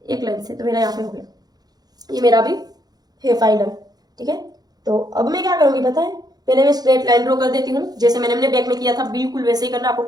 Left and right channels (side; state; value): left; late; 0.19 ms